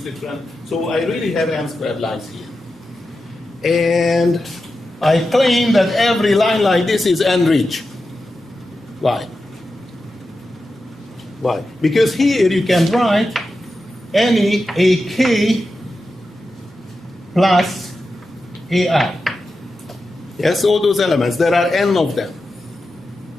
different. So I really have n squared lines here. And I claim that every line like this is n-rich. Why? Why? Because here you can write any AK plus AI. Yes, all those elements. There are n of them.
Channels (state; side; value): normal; both; correlation 0.91